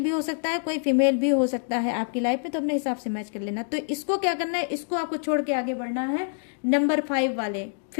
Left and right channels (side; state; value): right; silent; digital silence